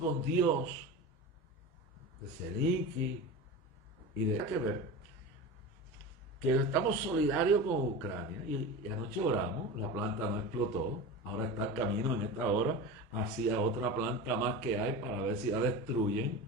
Dios, de Zelensky y de que ver? Que estamos solidarios con Ucrania y anoche oramos, la planta no explotó, ahora está el camino en esta hora hacia otra planta más que hay para ver si la destruyen.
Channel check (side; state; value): both; normal; correlation 0.28